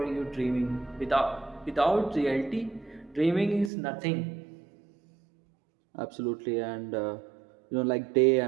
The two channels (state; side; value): drops out; left; at 3.7 s